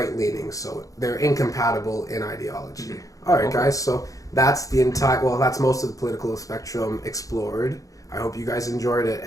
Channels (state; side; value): late; right; 0.16 ms